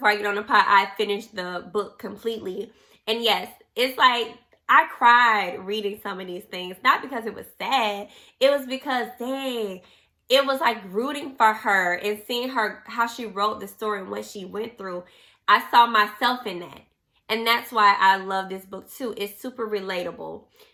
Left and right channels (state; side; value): identical; both; correlation 1.00